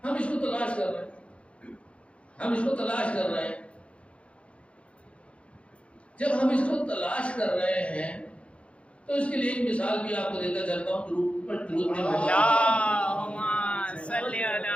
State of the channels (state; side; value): late; right; 0.061 ms